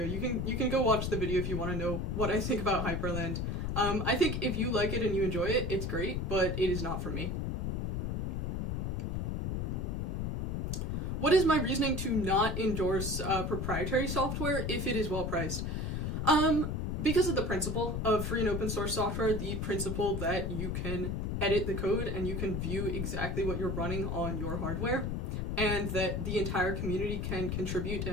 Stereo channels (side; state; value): left; noise; rumble, 1 dB below the sound